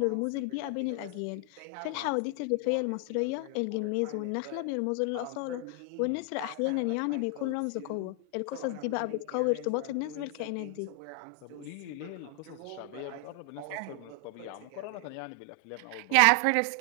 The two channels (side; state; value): both; different; correlation 0.00